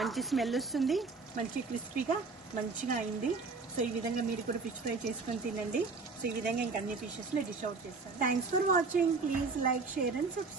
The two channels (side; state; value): left; quieter; 4.3 dB